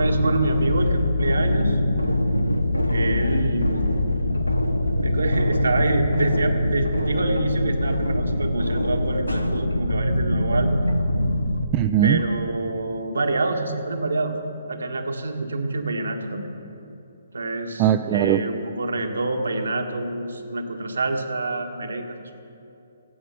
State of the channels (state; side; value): inverted; both; correlation -0.77